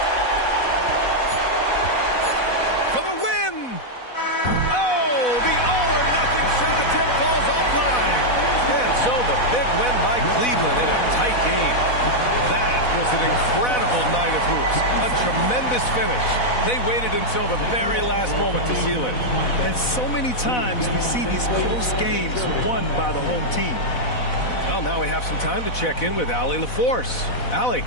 For the win! Oh, the all-or-nothing shot attempt falls offline. And so the big win by Cleveland in a tight game. That was an incredible night of hoops. A tremendous finish. They waited until the very last moment to seal it. And so many times we see these close games won by the home team. Well, now we have some time to check in with Allie LaForce. Allie.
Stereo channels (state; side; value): late; right; 4.0 ms